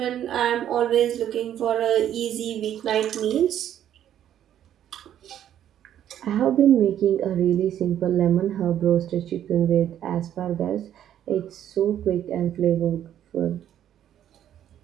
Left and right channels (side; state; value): left; quieter; 10.7 dB